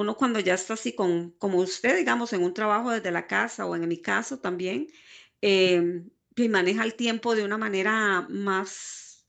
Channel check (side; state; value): both; identical; correlation 1.00